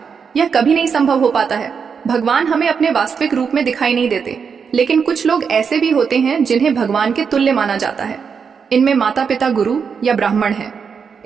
यह कभी नहीं संभव हो पाता है भगवान हमें अपने वास्तविक रूप में दिखाई नहीं देते, लेकिन कुछ लोग ऐसे भी होते हैं जिन्हें भगवान के तुल्य माना जाता है। इनमें माता पिता, गुरु या ब्राह्मण हैं।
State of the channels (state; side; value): quieter; left; 6.2 dB